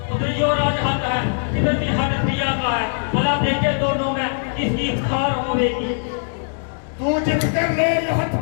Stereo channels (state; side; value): silent; right; digital silence